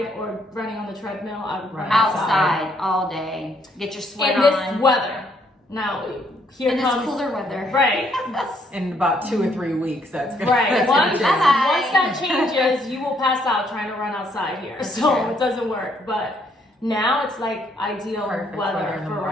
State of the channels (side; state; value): both; normal; correlation 0.70